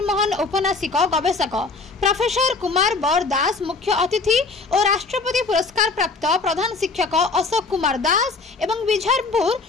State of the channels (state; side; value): quieter; right; 3.9 dB